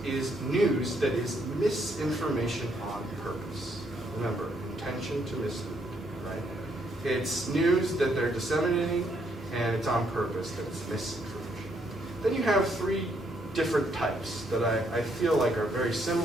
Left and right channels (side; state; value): both; normal; correlation 0.73